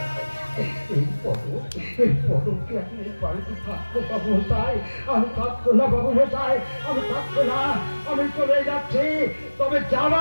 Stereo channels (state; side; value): inverted; both; correlation -1.00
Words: এই পদকে আপনি বাড়িতে থাকবো বাবু মশাই, আমি থাকবো না বাবু মশাই, আমি থাকবো না, আমি চলে যাচ্ছি। তবে